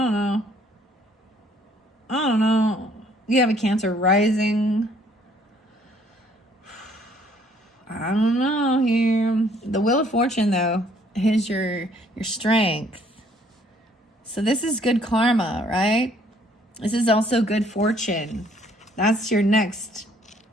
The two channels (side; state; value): both; normal; correlation 0.62